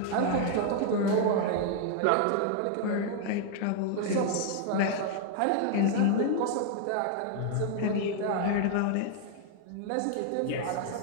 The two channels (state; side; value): different; both; correlation 0.00